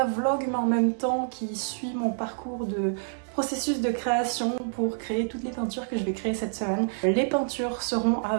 vlog mais en même temps qui suit mon parcours de processus de création pour créer toutes les peintures que je vais créer cette semaine. Les peintures seront à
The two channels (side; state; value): left; silent; digital silence